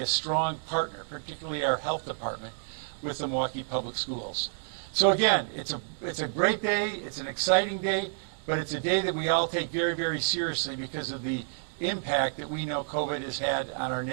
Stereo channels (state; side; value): silent; left; digital silence